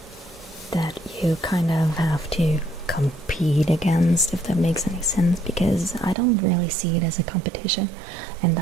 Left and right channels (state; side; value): drops out; left; at 6.2 s